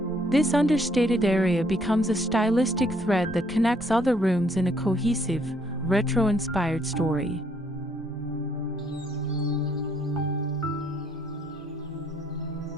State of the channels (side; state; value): both; normal; correlation 0.68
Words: This understated area becomes a stylistic thread that connects other rooms in a cohesive, retro-inspired story.